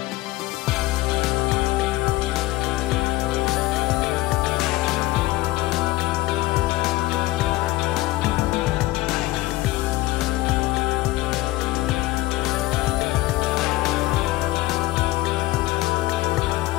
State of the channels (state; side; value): quieter; right; 18.1 dB